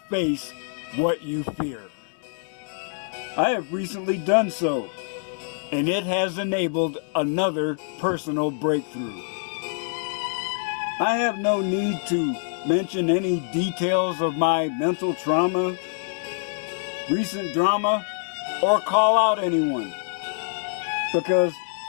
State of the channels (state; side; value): silent; right; digital silence